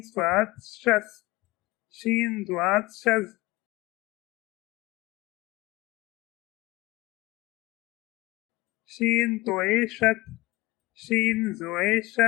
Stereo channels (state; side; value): quieter; right; 20.7 dB